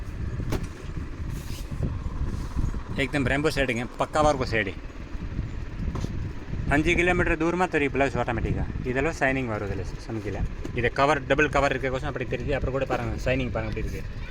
एकदम रेम्बो शेडिंग है, पक्का वर्क शेडी. 5 किलोमीटर दूर में तरी ब्लाउज ऑटोमेटिका इधर शाइनिंग वरुदिल्ल समझिल. इधर कवर डबल कवर इरुक्कोसम अप्पडी तेरियुदु. अप्पुறம் கூட பாருங்க ஷைனிங் பாருங்க அப்படி இருக்கு.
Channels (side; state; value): both; identical; correlation 1.00